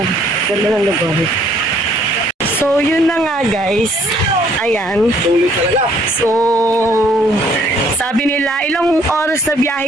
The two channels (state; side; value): normal; both; correlation 0.63